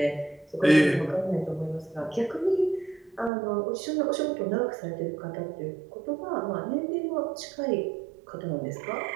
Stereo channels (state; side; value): drops out; left; at 3.3 s